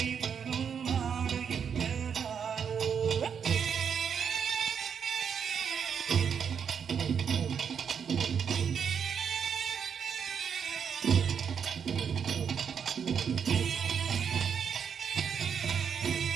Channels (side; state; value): left; quieter; 7.2 dB